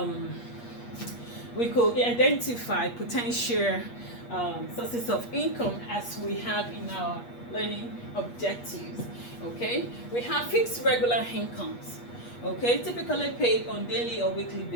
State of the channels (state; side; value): late; right; 8.4 ms